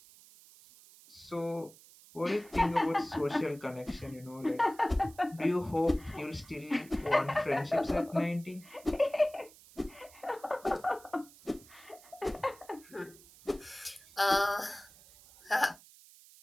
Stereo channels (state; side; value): noise; right; hiss, 22 dB below the sound